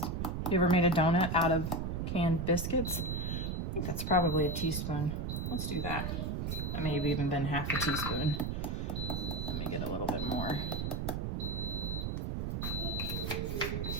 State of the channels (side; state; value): right; noise; rumble, 1 dB below the sound